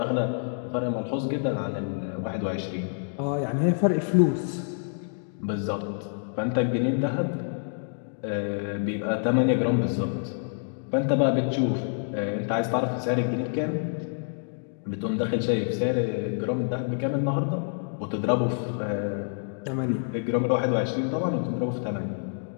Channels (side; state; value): right; silent; digital silence